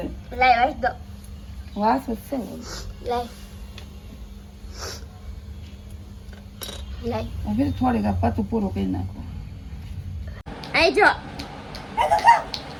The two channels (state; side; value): identical; both; correlation 1.00